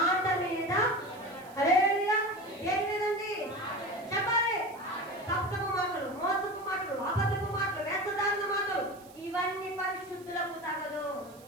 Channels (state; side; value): noise; right; hiss, 24 dB below the sound